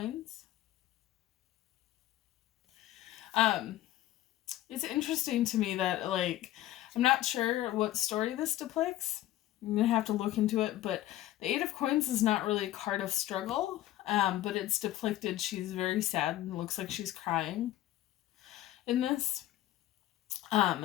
It's interesting to me that, like, I'm not sure what story this depicts. I'm going to have to look into it, but the Eight of Coins is not really a card of struggle, but it's depicted she's very sad and looks like she's crying in this.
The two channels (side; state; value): right; quieter; 14.4 dB